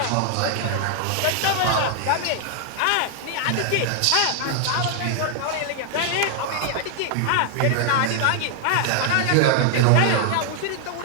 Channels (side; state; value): both; different; correlation 0.00